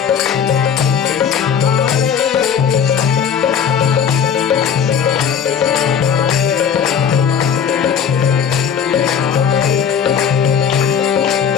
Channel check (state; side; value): quieter; right; 7.6 dB